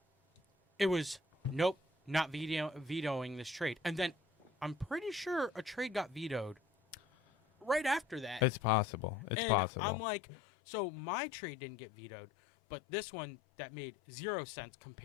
it was, nope, not vetoing this trade. And then, I'm pretty sure a trade got vetoed right after that. It's possible. It's and possible. I'm like, so my trade didn't get vetoed, but this one that made 0 sense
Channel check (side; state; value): right; drops out; at 9.3 s